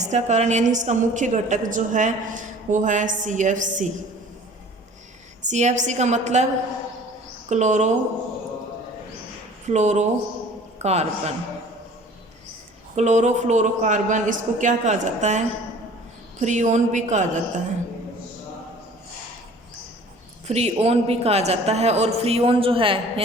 कारण यानी इसका मुख्य घटक जो है वो है CFC। CFC का मतलब क्लोरो फ्लोरोकार्बन। क्लोरोफ्लोरोकार्बन इसको क्या कहा जाता है, फ्रीओन भी कहा जाता है, फ्रीओन भी कहा जाता है। और फ्रीओन जो है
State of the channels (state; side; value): normal; both; correlation 0.48